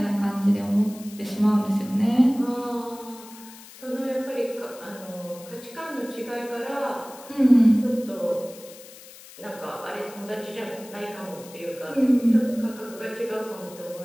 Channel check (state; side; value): noise; left; hiss, 18 dB below the sound